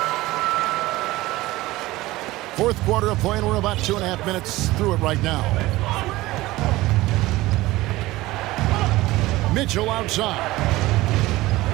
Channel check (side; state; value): left; quieter; 18.5 dB